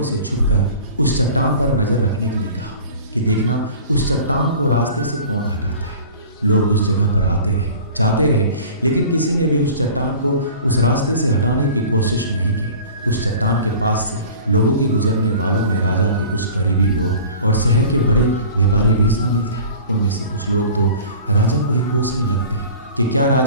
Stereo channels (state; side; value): inverted; both; correlation -0.42